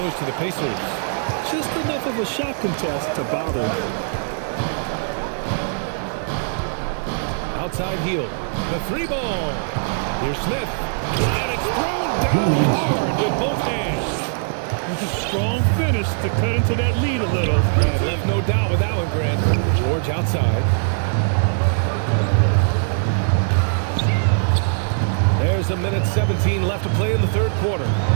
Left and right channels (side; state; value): left; silent; digital silence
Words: to the Pacers. Just enough of a shot contest to bother him. Outside heel. The 3 ball. Here's Smith. And it's thrown down hard with both hands. It's a strong finish to cut into that lead a little. And left no doubt with that one, Grant. George outside. There's a minute 17 left to play in the third quarter.